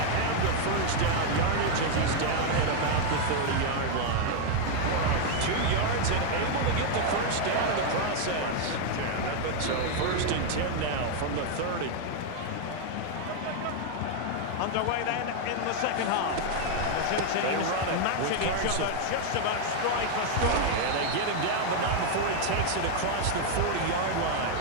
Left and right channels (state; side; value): different; both; correlation 0.00